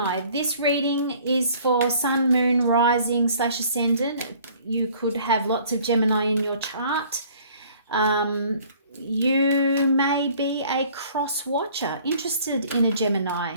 This reading is for Sun, Moon, Rising / Ascendant. You could have lots of Gemini in your chart. You may be a cross watcher, interested in a Gemini.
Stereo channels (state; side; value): inverted; both; correlation -0.54